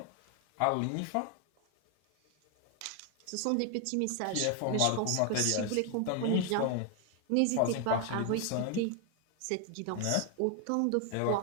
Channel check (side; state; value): both; different; correlation 0.01